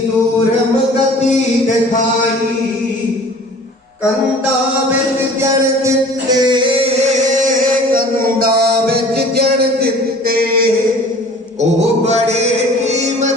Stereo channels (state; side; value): normal; both; correlation 0.47